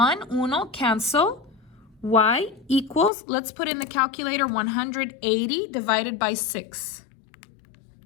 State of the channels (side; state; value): right; drops out; at 3.1 s